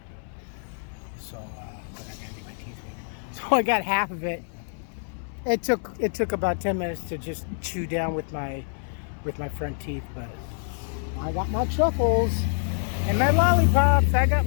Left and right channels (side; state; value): right; silent; 60 dB below the other